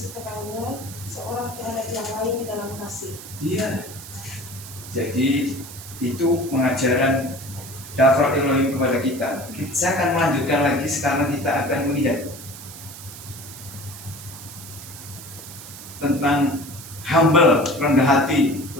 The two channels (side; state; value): right; noise; hiss, 14 dB below the sound